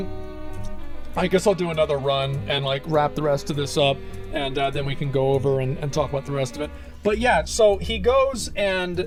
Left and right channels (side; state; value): both; identical; correlation 1.00